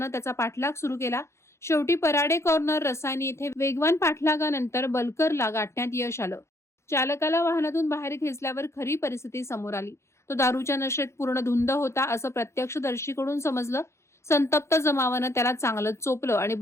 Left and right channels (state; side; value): late; right; 0.13 ms